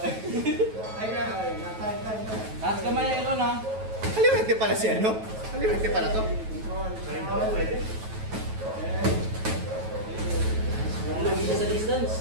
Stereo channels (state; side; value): late; left; 9.2 ms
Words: Ay na, ay na. Time. Taas kamay Aaron ha. Kaliwete pala si ano? Kaliwete pala to. Control. Lugi siya sa distance.